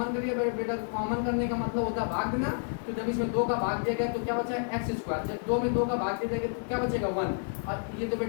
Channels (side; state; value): right; silent; 58 dB below the other